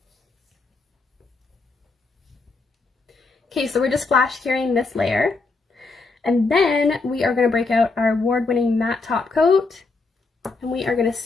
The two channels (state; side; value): quieter; right; 3.8 dB